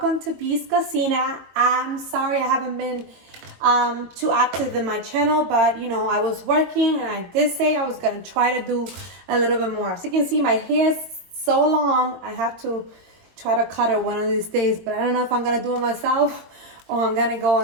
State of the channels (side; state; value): left; late; 22 ms